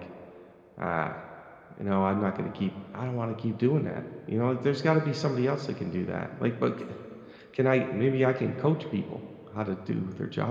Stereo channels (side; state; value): both; identical; correlation 1.00